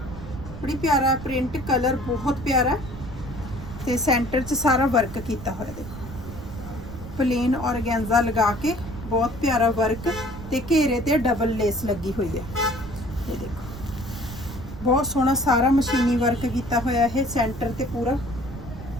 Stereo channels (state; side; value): noise; right; rumble, 11 dB below the sound